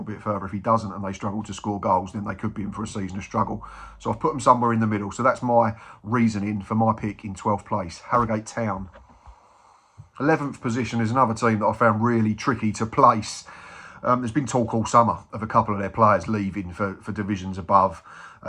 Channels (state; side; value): identical; both; correlation 1.00